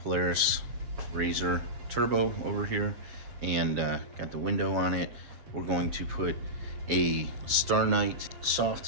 Polaris RZR Turbo over here, and got the window on it. We're going to put a Star Knight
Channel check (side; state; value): left; late; 7.4 ms